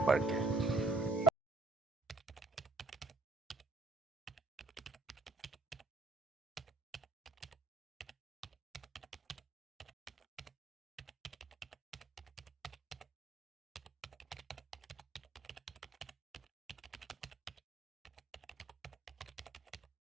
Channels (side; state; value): left; quieter; 3.0 dB